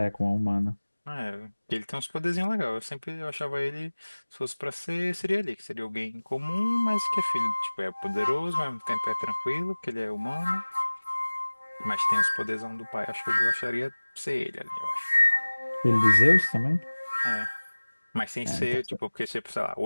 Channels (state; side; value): inverted; both; correlation -1.00